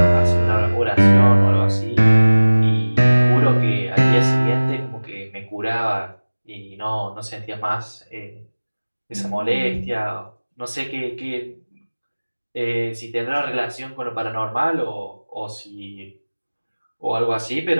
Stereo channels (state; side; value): inverted; both; correlation -1.00